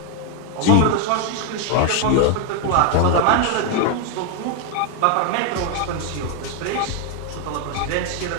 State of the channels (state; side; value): different; both; correlation 0.01